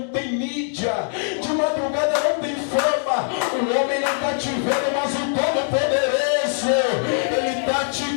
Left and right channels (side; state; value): right; silent; digital silence